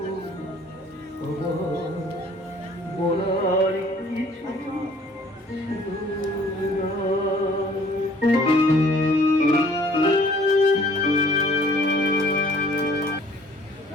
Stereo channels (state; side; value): normal; both; correlation 0.55